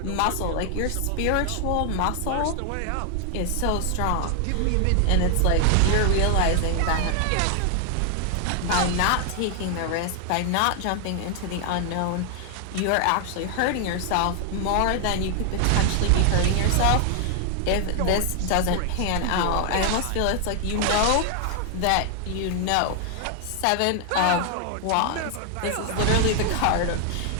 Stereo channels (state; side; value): different; both; correlation 0.00